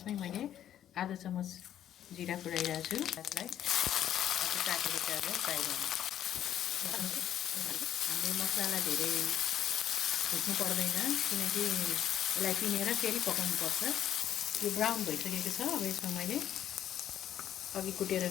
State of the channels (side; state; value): right; quieter; 10.9 dB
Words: मैले आधा चम्मच जिरा पुऱ्याइरहेको छु। त्यसलाई काटेको प्याजलाई फ्राई गर्नु। हामीले मसलालाई धेरै भुट्नु पर्दैन, किनकि यसलाई पिनेर फेरि पकाउनु पर्छ। यो ब्राउन भइसकेको छ। अब यसमा मैले अघि कुटेर